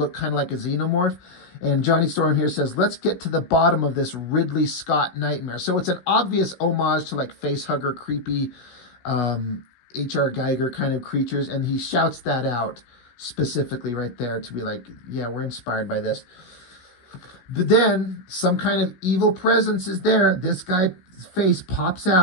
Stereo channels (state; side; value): late; right; 16 ms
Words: kind of like a xenomorph. And Johnny Storm here says, let's get to the bottom of this Ridley Scott nightmare. So it's an obvious homage to like facehugger, creepy H.R. Geiger kind of creatures. And he shouts that out specifically right there to be like, yeah, we're inspired by this. But then some kind of evil presence is there. This guy's face pops